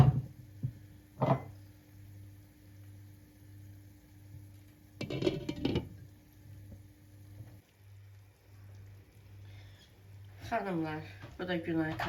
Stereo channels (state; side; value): identical; both; correlation 1.00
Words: Xanımlar, bu da Günay